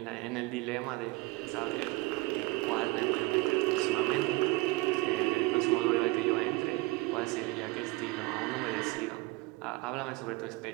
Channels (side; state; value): left; quieter; 22.3 dB